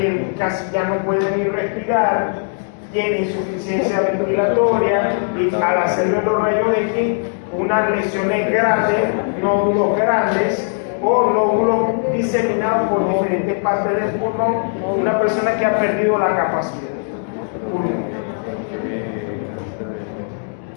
casi ya no puede ni respirar, tiene insuficiencia ventilatoria y al hacerle los rayos X, unas lesiones grandes, nódulos grandes o nódulos diseminados por diferentes partes del pulmón, una persona que ha perdido la capacidad pulmonar.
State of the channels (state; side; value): silent; right; 66 dB below the other